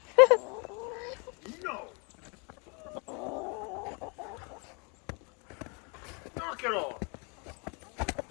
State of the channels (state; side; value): quieter; right; 33.5 dB